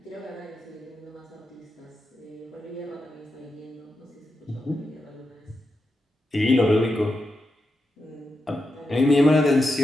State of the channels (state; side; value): normal; both; correlation 0.87